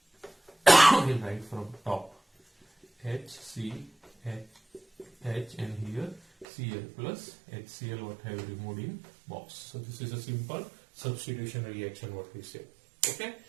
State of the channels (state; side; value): drops out; left; at 6.5 s